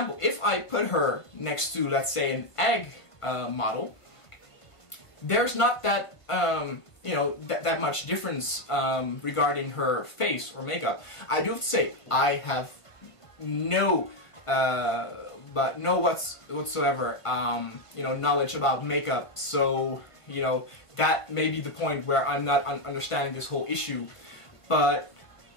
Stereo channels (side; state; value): right; late; 1.5 ms